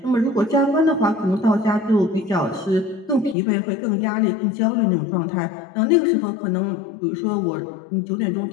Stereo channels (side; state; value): right; drops out; at 3.4 s